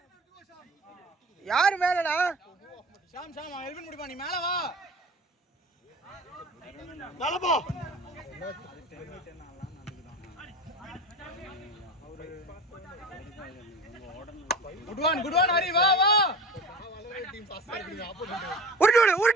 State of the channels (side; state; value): both; normal; correlation 0.35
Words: யார் மேலடா? ஷாம் எல்வின் முடிப்பா நீ மேல வா. நலபா குட் ஒன் ஹரி வா டீம் பாஸ் பண்ணிடுங்க. ஆப்போசிட் உருட்டி